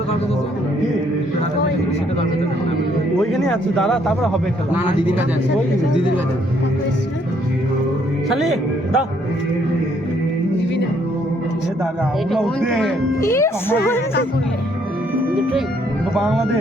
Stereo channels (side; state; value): both; normal; correlation 0.68